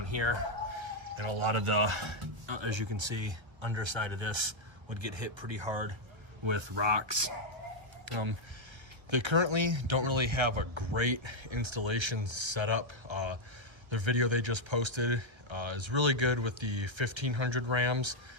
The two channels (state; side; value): late; left; 1.3 ms